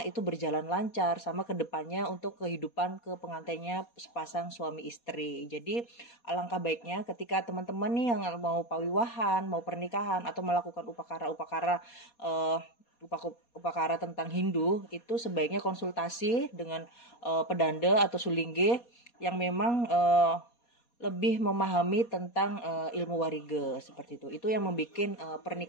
itu berjalan lancar sama kedepannya untuk kehidupan ke pengantinnya sepasang suami istri. Jadi alangkah baiknya ketika teman-teman nih yang mau pawiwahan, mau pernikahan atau melakukan upakara tentang Hindu, itu sebaiknya konsultasi dengan pedanda atau sulingge yang memang lebih memahami tentang ilmu wariga seperti itu. Itu yang membuat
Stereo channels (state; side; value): late; right; 4.2 ms